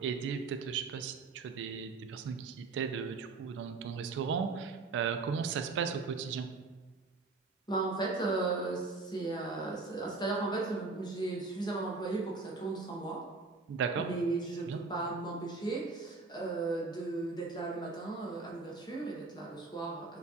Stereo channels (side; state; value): left; quieter; 4.0 dB